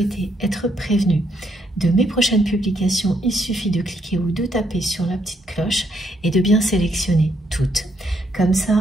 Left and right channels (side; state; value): both; normal; correlation 0.74